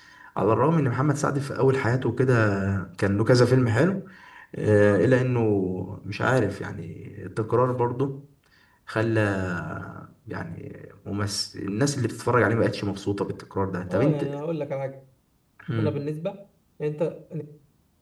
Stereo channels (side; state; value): both; identical; correlation 1.00